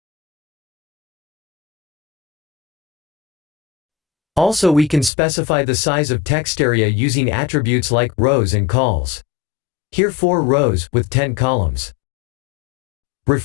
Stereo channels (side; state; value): right; drops out; at 5.1 s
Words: Also, we can specify the size of text area using attributes like rows and cols. Here 4 rows with 10 columns.